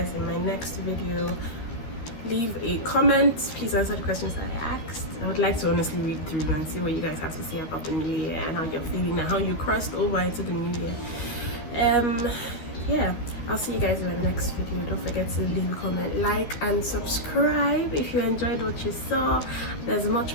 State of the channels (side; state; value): right; late; 13 ms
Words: in my next video. Leave a comment. Please answer the questions I asked. I would like to honestly read through and see what you guys have to say about the new year and how you're feeling and how you crossed over into the new year. Yeah, I'll see you guys in my next video. Don't forget to leave a comment, like and subscribe if you enjoyed what you saw. There's much